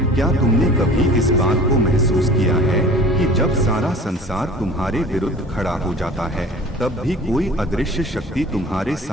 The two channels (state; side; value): normal; both; correlation 0.44